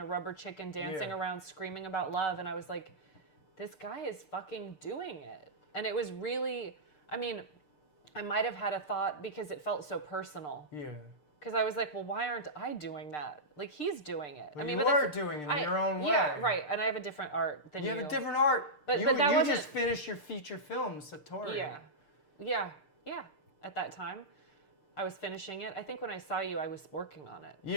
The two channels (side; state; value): right; late; 6.7 ms